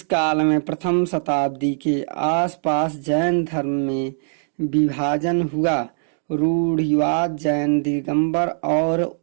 काल में प्रथम शताब्दी के आसपास जैन धर्म में विभाजन हुआ। रूढ़िवाद जैन दिगंबर और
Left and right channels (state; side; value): silent; left; digital silence